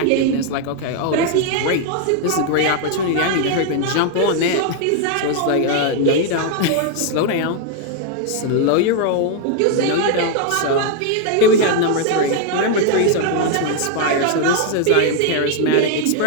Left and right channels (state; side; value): different; both; correlation 0.00